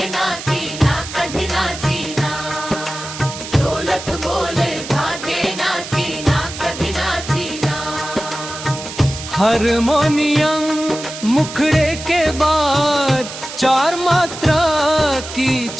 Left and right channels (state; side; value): noise; right; hiss, 10 dB below the sound